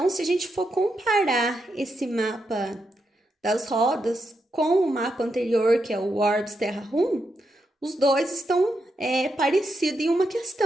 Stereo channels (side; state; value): both; normal; correlation 0.84